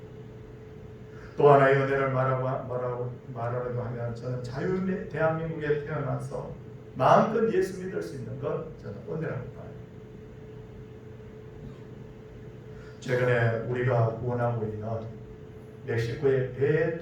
또 하나의 은혜를 말하려고 하면 저는 자유 대한민국에 태어나서 마음껏 예수 믿을 수 있는 것 저는 은혜라고 봐요. 최근에 우리가 후원하고 있는 멕시코의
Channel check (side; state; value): both; identical; correlation 1.00